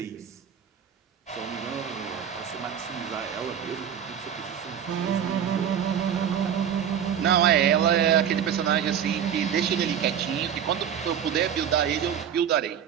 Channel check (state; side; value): quieter; left; 8.7 dB